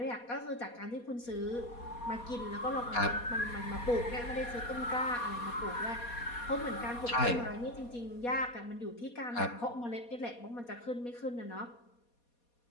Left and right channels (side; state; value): right; late; 4.2 ms